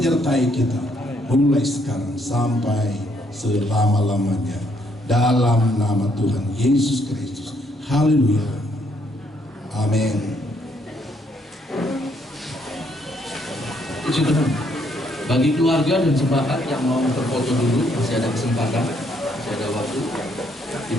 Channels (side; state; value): both; normal; correlation 0.71